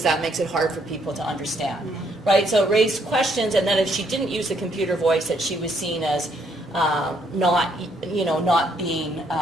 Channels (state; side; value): normal; both; correlation 0.70